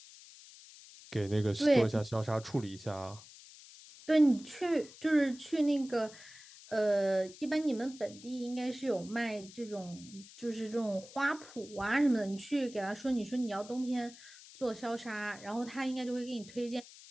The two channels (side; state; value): left; noise; hiss, 19 dB below the sound